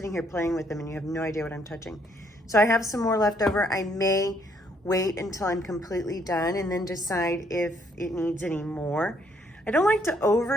here playing with them, and you have no idea what I'm touching. So I have some more left over. I may wait until I'm completely done and then decide if it needs any more. I don't like to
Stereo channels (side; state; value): both; normal; correlation 0.69